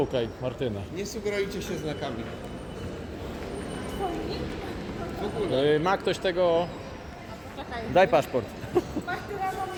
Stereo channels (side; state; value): both; identical; correlation 1.00